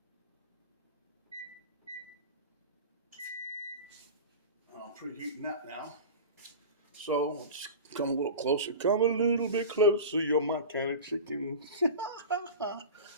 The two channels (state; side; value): inverted; both; correlation -0.30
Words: I'm preheating that now. So let's come a little closer. Come a little bit closer. You're my kind of chicken.